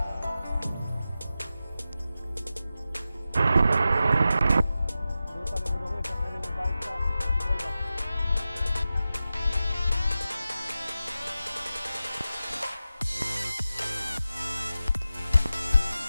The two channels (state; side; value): inverted; both; correlation -0.92